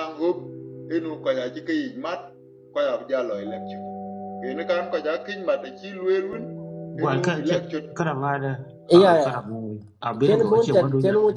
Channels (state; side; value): identical; both; correlation 1.00